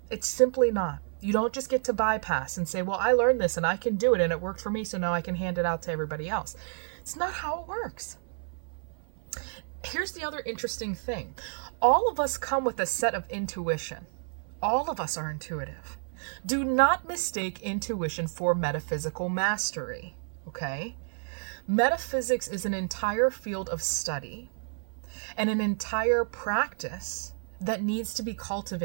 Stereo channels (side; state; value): left; silent; 55 dB below the other